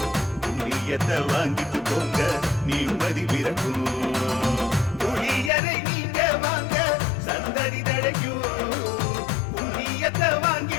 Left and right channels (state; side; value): drops out; right; at 5.5 s